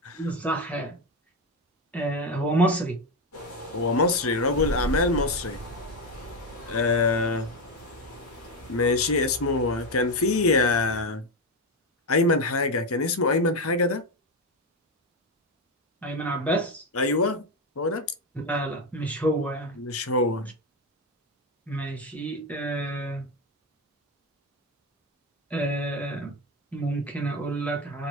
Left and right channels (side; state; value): both; normal; correlation 0.11